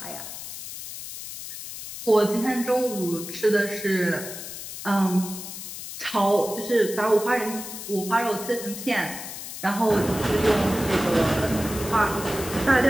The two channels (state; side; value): noise; left; hiss, 10 dB below the sound